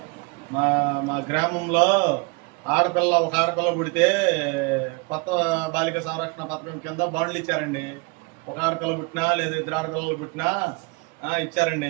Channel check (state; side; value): quieter; left; 28.4 dB